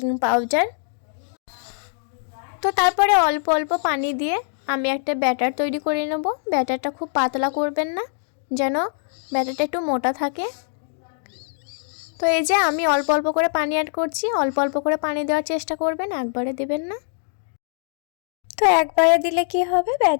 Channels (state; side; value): silent; right; digital silence